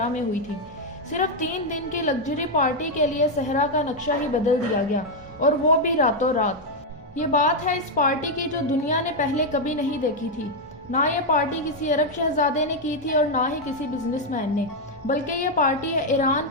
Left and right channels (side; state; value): both; normal; correlation 0.01